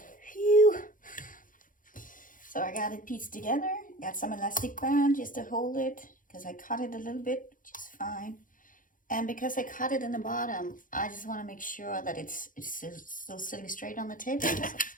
Phew. So I got it pieced together, got some elastic band just to hold it, because I cut it a little bit, which is fine. And because I cut it in the bottom, I just want to make sure that it's still sitting straight on the table. So I've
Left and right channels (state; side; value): late; right; 0.39 ms